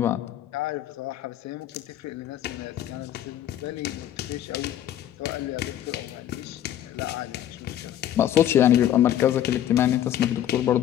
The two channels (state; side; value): quieter; right; 11.4 dB